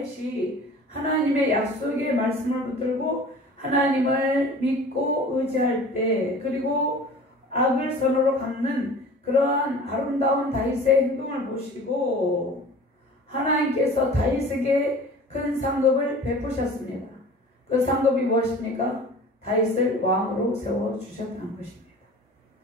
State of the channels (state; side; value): normal; both; correlation 0.42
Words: 하나님의 약속의 말씀을 붙들고 하나님을 믿고 의지할 때, 그리고 악을 선으로 갚는 그러한 아름다운 다윗의 행동을 보시고 하나님께서 다윗에게 큰 상급을 베푸셨습니다. 그 상급이 무엇입니까? 다윗을 왕으로 세워주셨다는 것입니다.